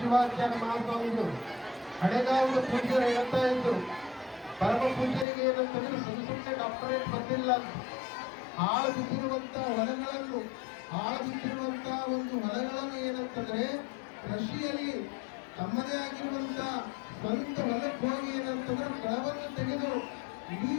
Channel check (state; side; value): drops out; right; at 5.2 s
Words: ಶಿವಾಚಾರ್ಯ ಮಹಾಸ್ವಾಮಿಗಳು ಹಳೆಗಾವದ ಪೂಜ್ಯರು ಹೇಳ್ತಾ ಇದ್ರು, ಪರಮ ಪೂಜ್ಯರಿಗೆ ಏನಂತಂದ್ರೆ ಸುಮ್ಮನೆ ಡಾಕ್ಟರೇಟ್ ಬಂದಿಲ್ಲ, ಹಾಳು ಬಿದ್ದಿರುವಂತ ಒಂದು ಹೊಲಗಳನ್ನು ಏನಂತಂದ್ರೆ ಕೃಷಿಯಲ್ಲಿ ತಮ್ಮದೇ ಆಗಿರುವಂತ ಸ್ವಂತ ಹೊಲಕ್ಕೆ ಹೋಗಿ ಏನಂತಂದ್ರೆ ಕಳವನ್ನು ತೆಗೆದು ಇಡೀ